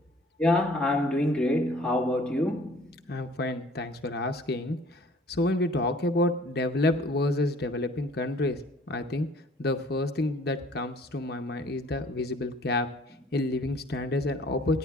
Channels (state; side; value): normal; both; correlation 0.54